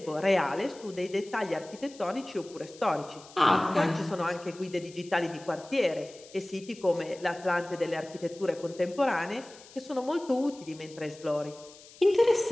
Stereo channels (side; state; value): left; noise; hiss, 21 dB below the sound